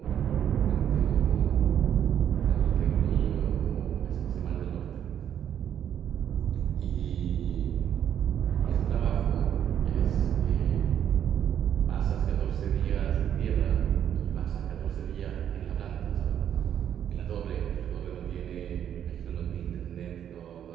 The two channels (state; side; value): quieter; left; 9.6 dB